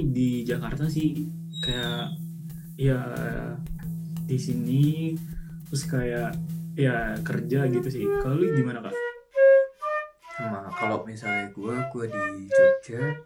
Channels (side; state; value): both; identical; correlation 1.00